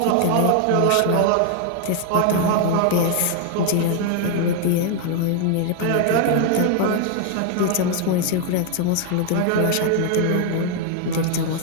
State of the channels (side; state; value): both; different; correlation 0.00